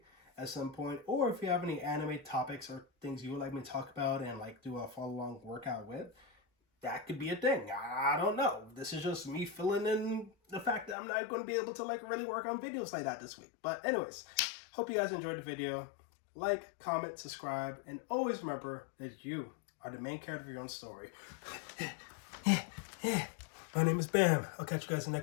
at some point. Or if you have any anime topics or things you would like me to talk about and like do a follow-along workout with, that could be a thing. I don't know. This is just me filling in the fact that I'm not going to be able to like really work on videos like that this week. But anyways, hope you guys enjoyed the video. Like, comment, subscribe, and always remember that you are the main character of your own story. My name is Bam. I'll catch you guys in the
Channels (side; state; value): right; drops out; at 11.0 s